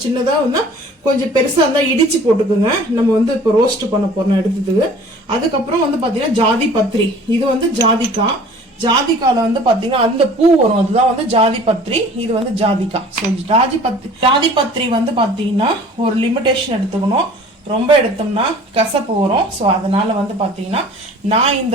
சின்னதா வந்து கொஞ்சம் பெருசா இருந்தா இடிச்சு போட்டுக்குங்க. நம்ம வந்து இப்போ ரோஸ்ட் பண்ண போறோம் எடுத்ததுக்கு. அதுக்கப்புறம் வந்து பாத்தீங்கன்னா ஜாதி பத்திரி. இது வந்து ஜாதிக்கால வந்து பாத்தீங்கன்னா அந்த பூ வரும், அதுதான் வந்து ஜாதி பத்திரி. இது வந்து ஜாதிக்காய். ஸோ ஜாதி பத்திரி வந்து பாத்தீங்கன்னா ஒரு லிமிடேஷன் எடுத்துக்கணும். ரொம்ப எடுத்தோம்னா கசப்பு வரும். ஸோ அதனால வந்து பாத்தீங்கன்னா நான்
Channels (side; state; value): both; normal; correlation 0.47